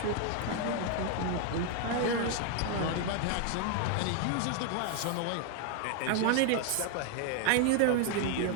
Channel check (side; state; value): both; different; correlation 0.00